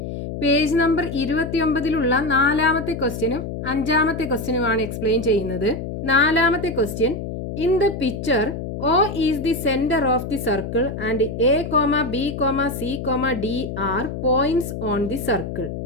പേജ് നമ്പർ 29 നാലാമത്തെ ക്വസ്റ്റ്യനും അഞ്ചാമത്തെ ക്വസ്റ്റ്യനുമാണ് എക്സ്പ്ലെയിൻ ചെയ്യുന്നത്. നാലാമത്തെ question, in the picture O is the centre of the circle and A, B, C, D are points on the circle.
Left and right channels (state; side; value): noise; left; hum, 6 dB below the sound